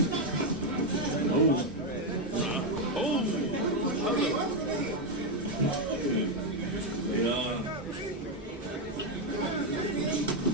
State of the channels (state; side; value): normal; both; correlation 0.04